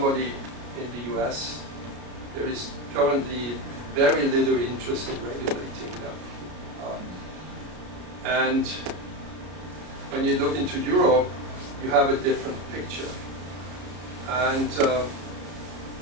in the US, there is currently very little interest in regulating them. And when you look into Europe, you have a different picture. And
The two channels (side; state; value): left; late; 33 ms